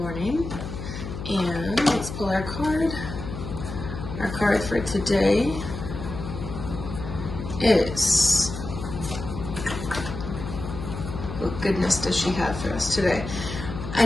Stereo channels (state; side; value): noise; left; hum, 8 dB below the sound